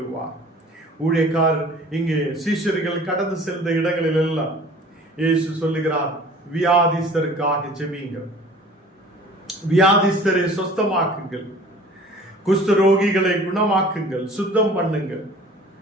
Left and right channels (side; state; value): both; normal; correlation 0.47